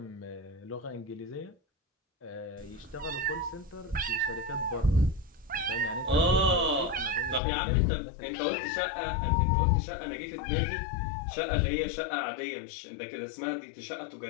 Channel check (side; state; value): right; drops out; at 7.4 s